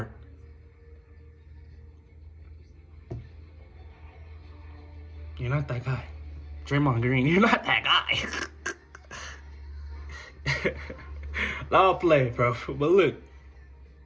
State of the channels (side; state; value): both; identical; correlation 1.00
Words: You're not that guy. Draymond Green, you're not that guy. I'll play, bro. But look,